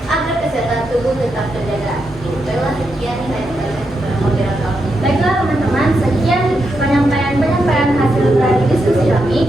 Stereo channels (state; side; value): normal; both; correlation 0.84